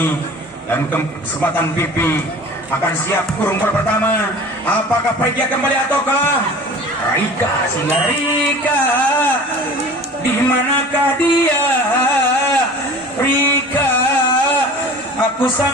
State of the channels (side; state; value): both; normal; correlation 0.41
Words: dan kesempatan Pipi akan siap kurung bola pertama. Apakah Pregia kembali ataukah Rika? Sehingga Rika, di manakah dia? Rika, aku